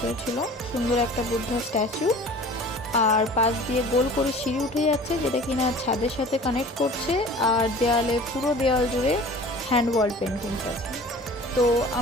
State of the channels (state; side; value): normal; both; correlation 0.44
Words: ছিল। সুন্দর একটা বুদ্ধা স্ট্যাচু, আর পাশ দিয়ে গোল করে সিঁড়ি উঠে যাচ্ছে, যেটা কিনা ছাদের সাথে কানেক্ট করছে। আর দেয়ালে, পুরো দেয়াল জুড়ে হ্যান্ড ওয়াল পেন্টিংস আছে। তো